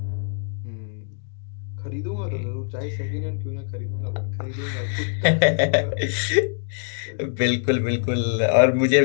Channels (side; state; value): right; silent; digital silence